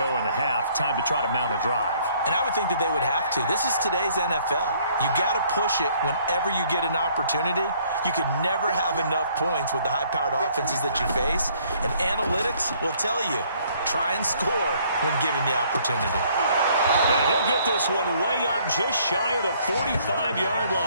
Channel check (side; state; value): both; inverted; correlation -0.62